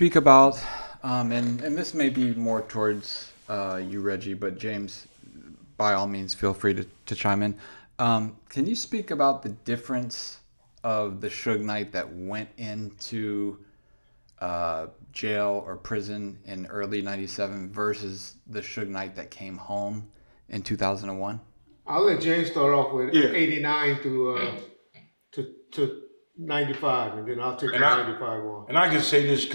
about, and this may be more towards you, Reggie, but James, by all means, feel free to chime in. Can you speak about the difference of the Suge Knight that went into jail or prison in early '97 versus the Suge Knight that came home in 2001? I'll let James start off with Yeah. 89 to 95, and then I'll take the And I 95 one. and I can say this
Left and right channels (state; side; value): inverted; both; correlation -1.00